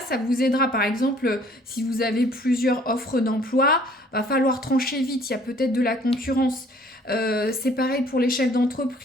vous aidera. Par exemple, si vous avez plusieurs offres d'emploi, va falloir trancher vite, il y a peut-être de la concurrence. C'est pareil pour les chefs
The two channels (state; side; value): normal; both; correlation 0.57